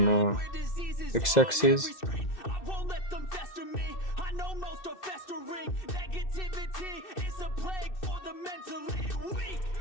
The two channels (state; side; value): late; right; 2.0 ms